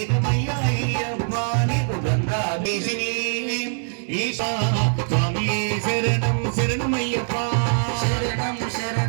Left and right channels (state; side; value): silent; left; 63 dB below the other